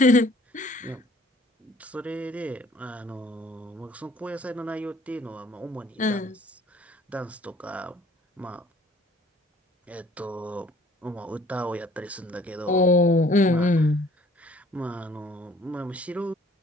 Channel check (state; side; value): normal; both; correlation 0.56